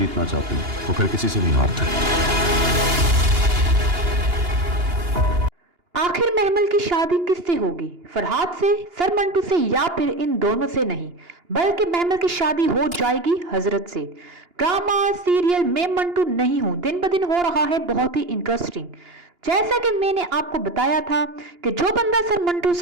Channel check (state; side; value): late; left; 2.9 ms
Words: चाहते हैं वो फिर किसी से नहीं हारते। आखिर महमल की शादी किससे होगी? फरहाद से, सर मंटू से, या फिर इन दोनों से नहीं, बल्कि महमल की शादी हो जाएगी हजरत से। ड्रामा सीरियल मैं मंटू नहीं हूं दिन ब दिन हो रहा है बहुत ही इंटरेस्टिंग। जैसा कि मैंने आपको बताया था कि जो बंदा सर मंटू